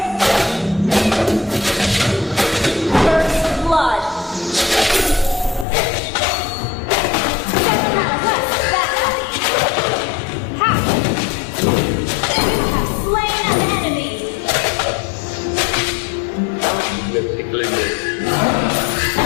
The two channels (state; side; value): drops out; right; at 5.7 s